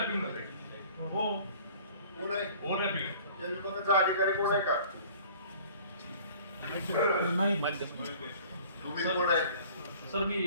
होते. हो, कोण आहे ओव्हरलॅपिंग आहे. या विभागाचा अधिकारी कोण आहे का? तुम्ही कोण आहे? सर मी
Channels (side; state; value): both; inverted; correlation -0.50